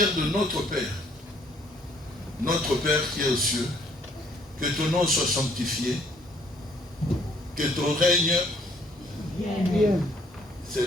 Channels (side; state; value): both; normal; correlation 0.63